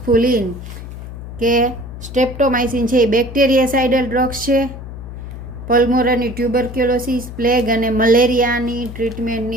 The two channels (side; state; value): left; noise; hum, 11 dB below the sound